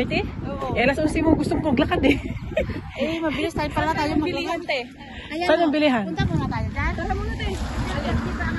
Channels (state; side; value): identical; both; correlation 1.00